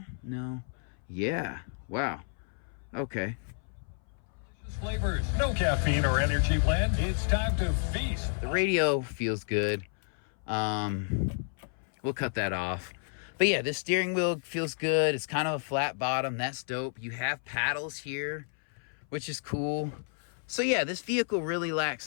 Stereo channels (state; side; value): silent; right; 57 dB below the other